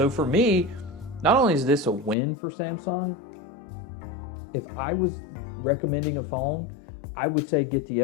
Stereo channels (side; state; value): right; drops out; at 2.1 s